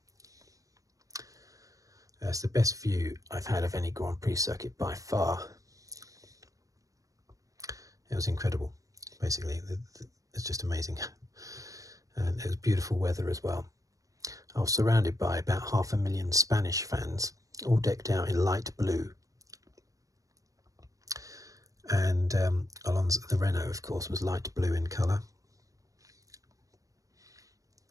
It's the best view I've had of any Grand Prix circuit by far. It was incredible, basically. It's just amazing. And it was beautiful weather as well. I was surrounded by about 500,000 Spanish fans, all decked out in light blue. And Alonso, the Renault, of course, was light blue in colour.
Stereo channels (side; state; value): left; late; 0.16 ms